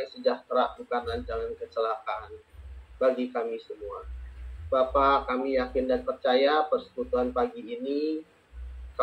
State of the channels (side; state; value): both; identical; correlation 1.00